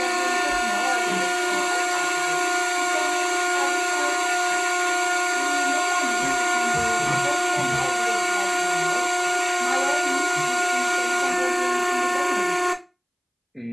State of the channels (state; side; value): identical; both; correlation 1.00